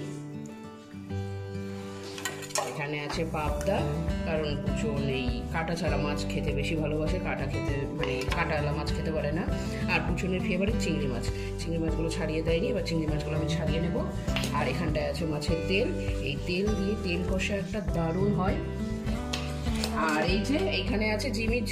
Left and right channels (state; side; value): identical; both; correlation 1.00